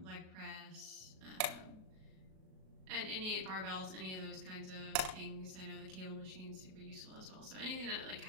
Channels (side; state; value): left; late; 38 ms